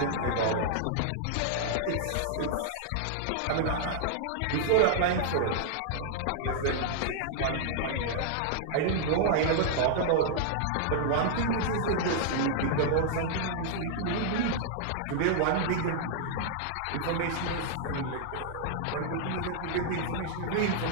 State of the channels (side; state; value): both; different; correlation -0.01